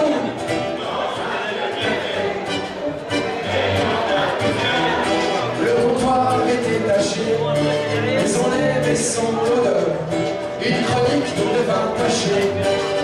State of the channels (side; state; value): both; identical; correlation 1.00